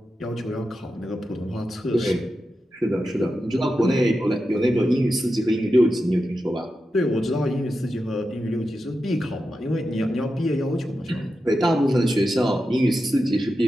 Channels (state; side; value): normal; both; correlation 0.90